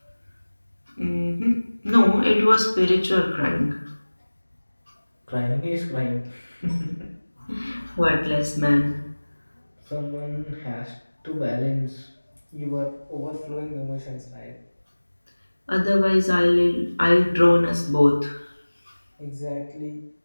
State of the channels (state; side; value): inverted; both; correlation -1.00